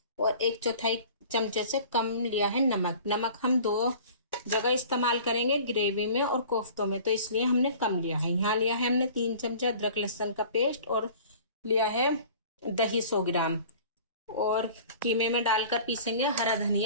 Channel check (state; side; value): inverted; both; correlation -0.45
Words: और 1/4 चमचे से कम लिया है नमक हम 2 जगह इस्तेमाल करेंगे, ग्रेवी में और कोफ्तों में, तो इसलिए हमने कम लिया है। यहाँ लिया है हमने 3 चमचा अदरक लहसुन का पेस्ट और लिया है दही 100 ग्राम। और कीमे में डालकर पीसेंगे हरा